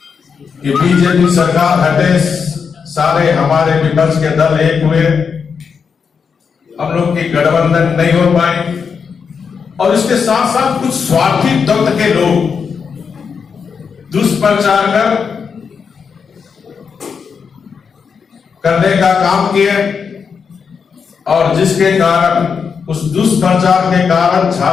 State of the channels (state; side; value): quieter; right; 6.1 dB